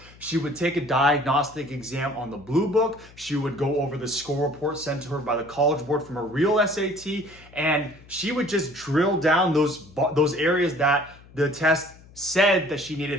She would take a diagnostic exam on the blue book. She would go over the score report sent to her by the College Board from a real SAT. And she would just drill down those areas that the test said that she needed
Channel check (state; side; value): noise; left; hum, 23 dB below the sound